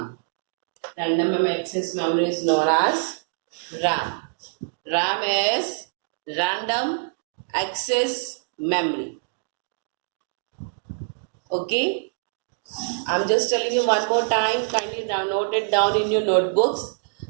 Random Access Memory is known as RAM. RAM is Random Access Memory. Okay, I'm just telling you one more time. Kindly note it down in your notebooks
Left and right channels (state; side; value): silent; left; digital silence